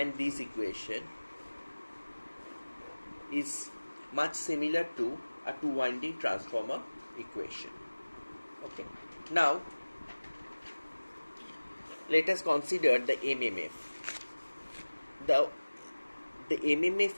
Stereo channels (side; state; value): both; inverted; correlation -1.00